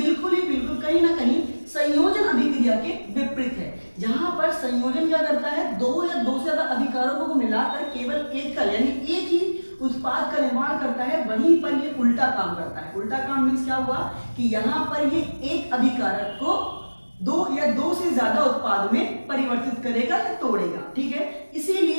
कहीं ना कहीं संयोजन अभिक्रिया के विपरीत है, जहां पर संयोजन क्या करता है, दो या दो से ज्यादा अभिकारकों को मिलाकर केवल एक का यानी एक ही उत्पाद का निर्माण करता है। वहीं पर ये उल्टा काम करता है। उल्टा काम मीन्स क्या हुआ कि यहाँ पर ये एक अभिकारक को दो या दो से ज्यादा उत्पाद में परिवर्तित करेगा या तोड़ेगा। ठीक है,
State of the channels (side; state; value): both; inverted; correlation -1.00